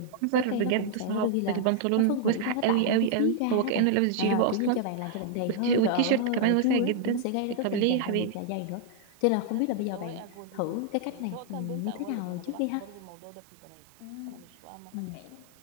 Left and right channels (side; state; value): both; different; correlation 0.00